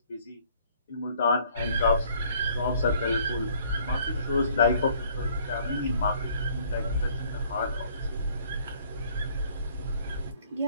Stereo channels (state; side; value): inverted; both; correlation -0.59